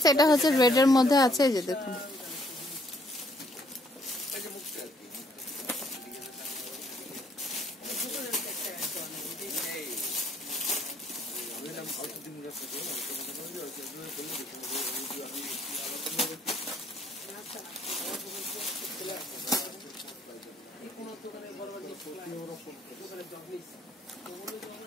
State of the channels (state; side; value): normal; both; correlation 0.66